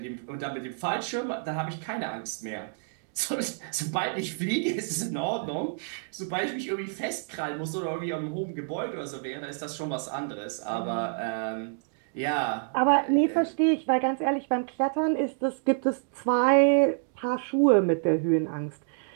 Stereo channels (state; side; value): silent; left; digital silence